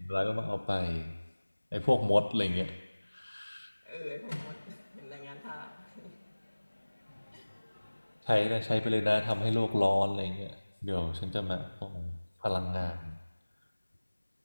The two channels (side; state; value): both; inverted; correlation -1.00